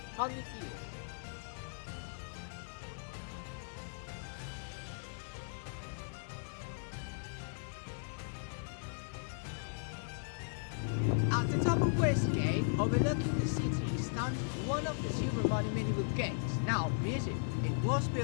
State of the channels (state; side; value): silent; right; 53 dB below the other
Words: years. At the top of Westgate, overlooking the city, stands one of the two remaining medieval gates, now museum. It was